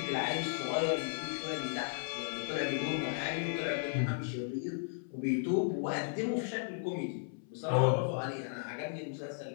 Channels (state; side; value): silent; right; 54 dB below the other